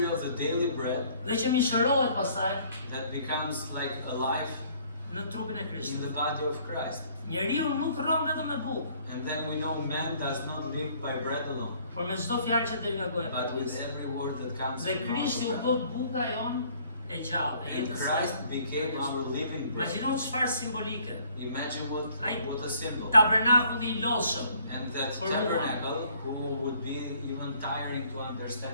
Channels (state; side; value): inverted; both; correlation -0.60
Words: of the daily bread dhe që mishërohet pastaj that becomes like alive në trupin e in Krishtit. the body of Christ. Njeriu nuk rron vetëm me bukë, And then we know man does not live by bread alone, por me çdo fjalë që del nga goja e but with Perëndisë. every word that comes Dhe from our Krishti u mouth. bë buka jon e gjallë, e And jetës. Christ became our living bread. Imagjino çfarë simbolike. Imagine what a symbol. Tabernakulli I lodhshëm, And that For tabernacle, who would be even tiring to